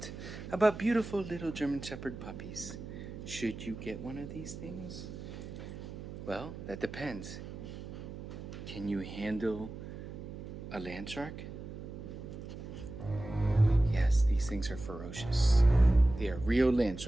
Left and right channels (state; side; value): noise; right; hum, 10 dB below the sound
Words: about beautiful little German Shepherd puppies. Should you get one of these things? Well, that depends. Can you handle a Landshark? Yes, these things are ferocious. They are real